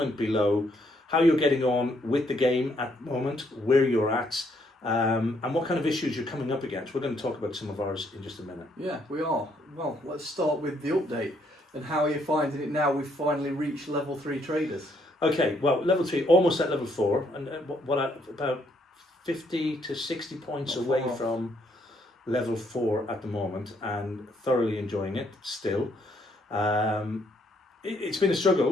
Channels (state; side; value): normal; both; correlation 0.71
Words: below how you're getting on with the game at the moment, where you're at, and what kind of issues you're coming up against. We're going to talk about some of ours in just a minute. Yeah, we are. Well, let's start with the update. And how are you finding it now we've finally reached level 3 traders? Okay, well, level 3, almost at level 4, and about 50 to 60 points away from level 4 at the moment, and thoroughly enjoying it still. It's been a